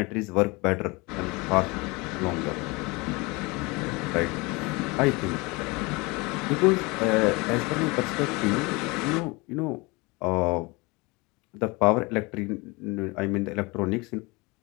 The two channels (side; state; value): right; quieter; 25.7 dB